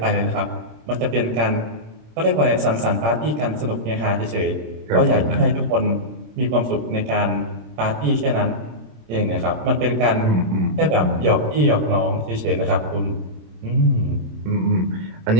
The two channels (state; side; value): late; left; 26 ms